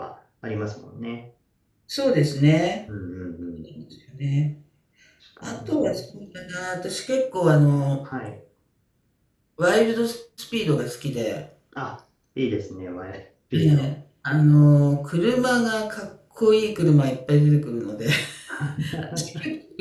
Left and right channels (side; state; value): both; identical; correlation 1.00